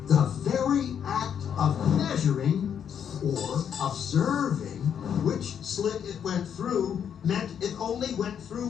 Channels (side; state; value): right; quieter; 8.3 dB